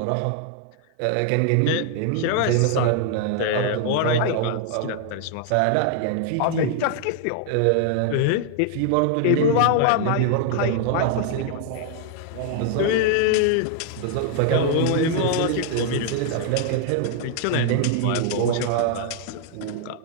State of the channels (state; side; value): different; both; correlation 0.00